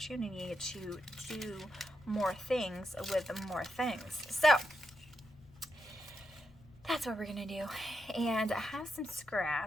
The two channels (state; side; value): noise; left; rumble, 24 dB below the sound